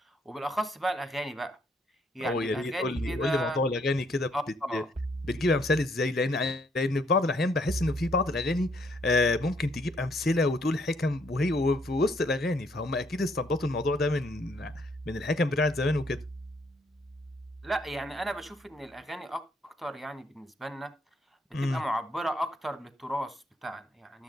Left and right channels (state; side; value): normal; both; correlation 0.69